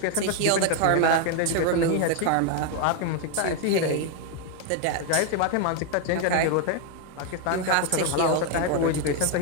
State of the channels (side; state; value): both; different; correlation 0.01